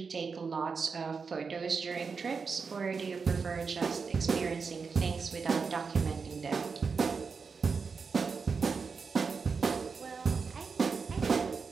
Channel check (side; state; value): left; quieter; 5.2 dB